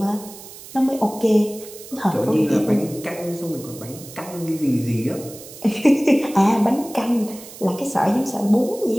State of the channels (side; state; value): right; noise; hiss, 16 dB below the sound